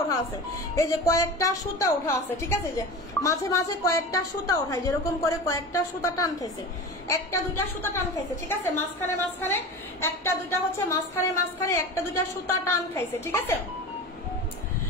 ওঠা আছে, এই যে কয়েকটা সুতা ওঠা আছে, ঠিক আছে। যে মাঝে মাঝে কয়েকটা সুতা ওঠায়, যেরকম করে কয়েকটা সুতা টান খাইছে, একটা দুইটা সুতা টান খাইছে, ঠিক আছে। মাঝখানে মাঝখানে একটা দুইটা হচ্ছে মাঝখানে মাঝখানে একটা দুইটা সুতা টান খাইছে, ঠিক আছে।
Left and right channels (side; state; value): both; normal; correlation 0.31